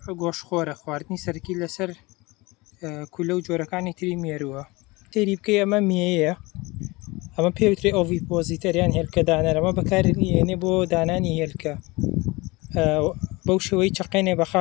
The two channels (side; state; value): right; quieter; 23.4 dB